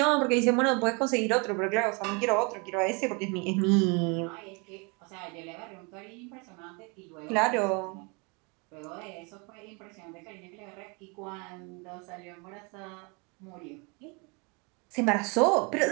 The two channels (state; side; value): quieter; left; 31.3 dB